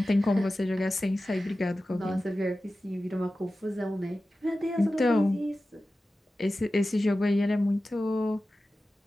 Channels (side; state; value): both; normal; correlation 0.94